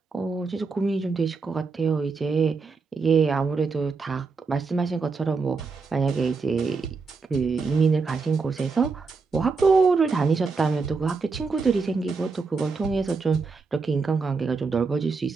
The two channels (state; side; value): quieter; left; 4.5 dB